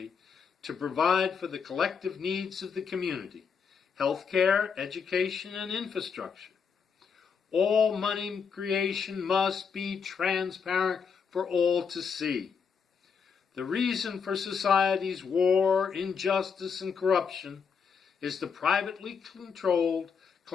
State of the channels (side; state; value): right; quieter; 6.2 dB